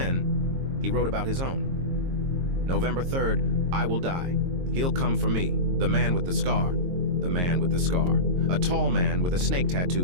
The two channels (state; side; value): late; left; 22 ms